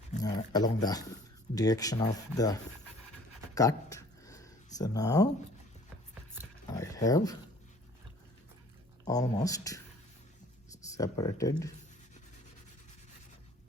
along the direction of the cut. So now I have almost separated.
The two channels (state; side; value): normal; both; correlation 0.52